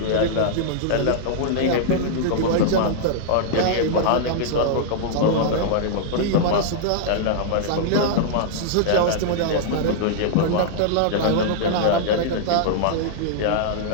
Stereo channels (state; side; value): different; both; correlation -0.01